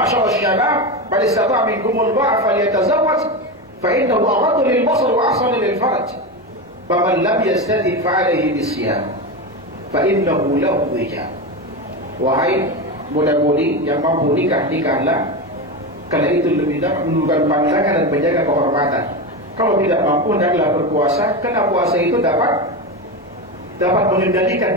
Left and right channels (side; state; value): both; normal; correlation 0.18